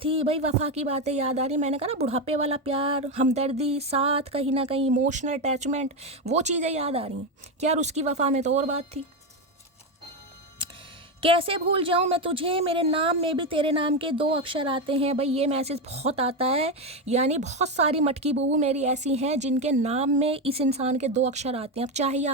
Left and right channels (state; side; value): normal; both; correlation 0.11